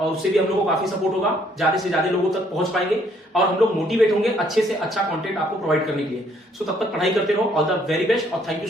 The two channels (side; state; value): both; normal; correlation 0.66